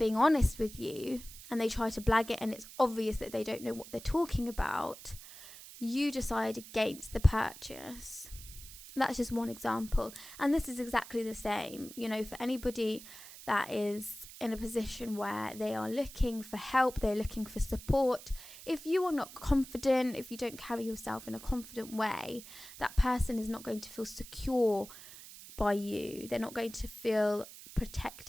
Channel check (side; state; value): right; noise; hiss, 16 dB below the sound